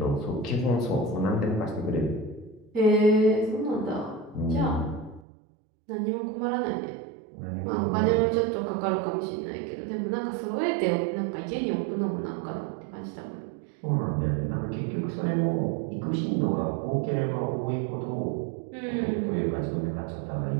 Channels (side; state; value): left; drops out; at 5.2 s